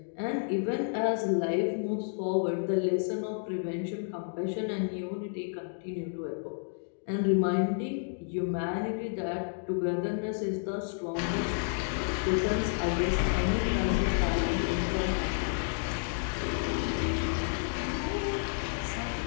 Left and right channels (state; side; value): silent; right; digital silence